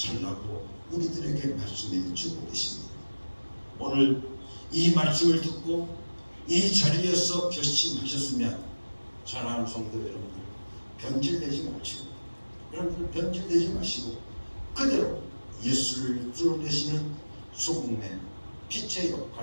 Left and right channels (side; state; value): both; inverted; correlation -1.00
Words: 우리들에게 말씀해 주고 계십니다. 오늘 이 말씀을 듣고 이 자리에서 결심하셨으면 사랑하는 성도 여러분들 변질되지 마시고 여러분들 변질되지 마시고 그대로 예수를 드러내시는 소금의 빛의